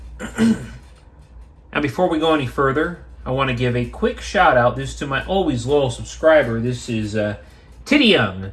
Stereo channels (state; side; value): identical; both; correlation 1.00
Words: And before we go any further, I want to give a quick shout out. This is to my always loyal subscriber. This is Titty Young.